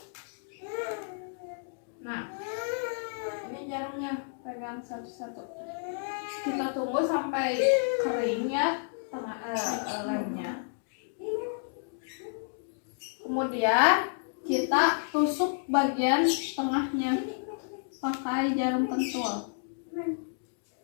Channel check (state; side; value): silent; right; digital silence